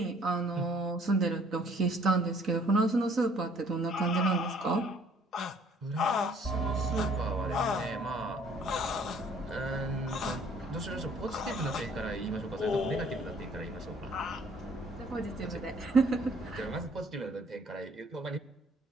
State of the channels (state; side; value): normal; both; correlation 0.59